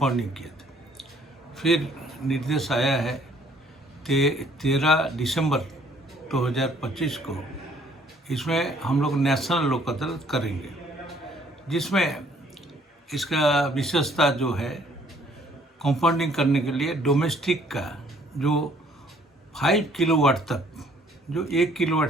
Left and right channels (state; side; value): normal; both; correlation 0.61